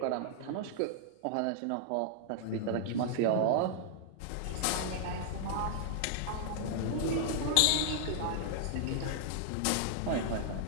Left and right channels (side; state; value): both; different; correlation -0.01